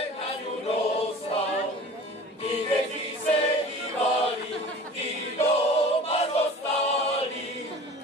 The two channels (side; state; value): both; normal; correlation 0.41